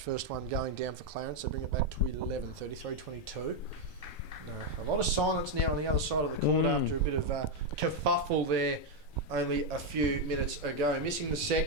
first one going down for Clarence. They bring it back to 11, 33-22. No, a lot of silence now on the other side of the court after a bit of kerfuffle there only a few minutes ago. Missing the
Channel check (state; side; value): normal; both; correlation 0.02